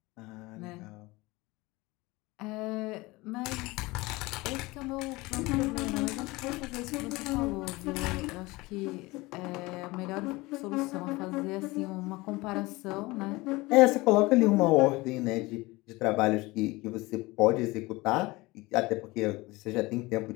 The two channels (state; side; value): quieter; right; 21.9 dB